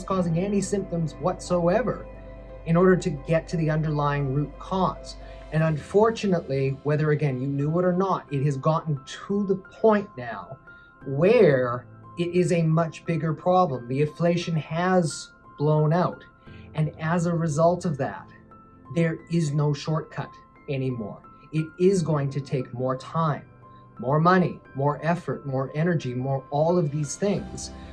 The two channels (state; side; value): identical; both; correlation 1.00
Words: causing any symptoms whatsoever, in order to get to the underlying root cause. And unfortunately, whether again you knew it or not, it has gotten to the point now where it is a much bigger problem. The inflation has blown out. And as a result of that, there is no shortcut anymore. It is going to take more time, more money, more effort, more energy, more all of these things,